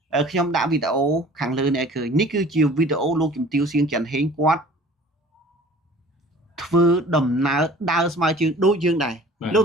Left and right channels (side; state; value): both; normal; correlation 0.48